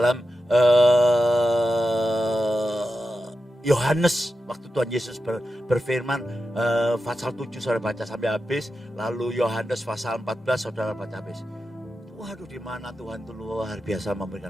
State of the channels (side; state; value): both; normal; correlation 0.91